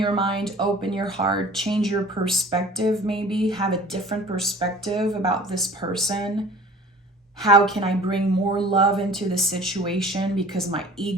mind, open your heart, change your perspective, maybe have a different perspective about this person. How can I bring more love into the situation because my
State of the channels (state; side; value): normal; both; correlation 0.45